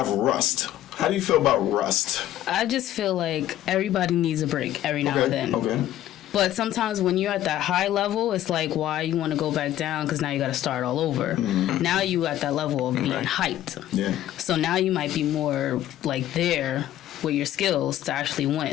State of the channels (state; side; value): quieter; right; 13.0 dB